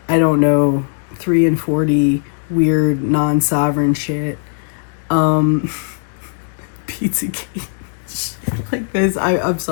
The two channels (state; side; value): silent; right; digital silence